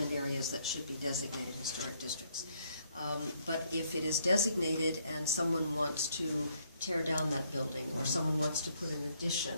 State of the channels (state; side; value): inverted; both; correlation -0.70